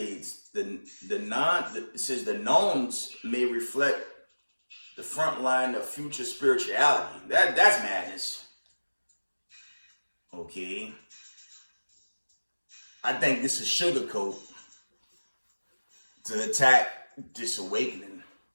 it says the nuns may reflect the front line of future spirituality. That's madness. Okay. I think this is sugarcoat to attack this awakening.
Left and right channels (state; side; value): inverted; both; correlation -1.00